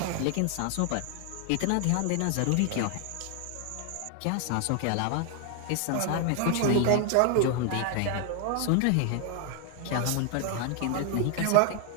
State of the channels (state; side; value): different; both; correlation 0.00